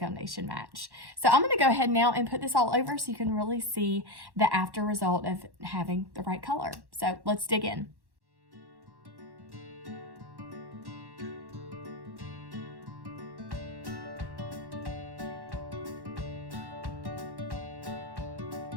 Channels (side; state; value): left; late; 1.1 ms